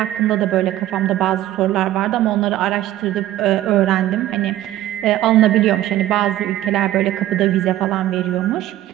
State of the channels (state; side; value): quieter; left; 14.0 dB